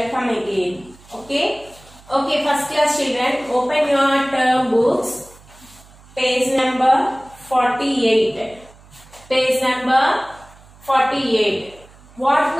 again. Okay. Okay. First class children, open your term books. Page number 48. Page number 48. What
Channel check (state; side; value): noise; right; hum, 25 dB below the sound